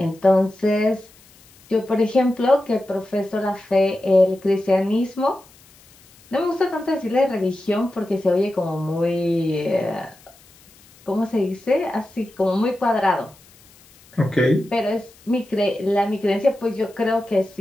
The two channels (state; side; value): noise; left; hiss, 27 dB below the sound